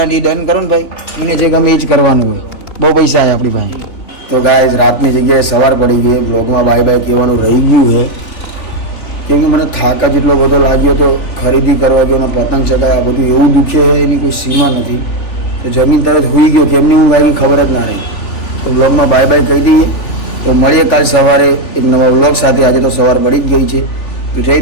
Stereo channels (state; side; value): late; right; 3.4 ms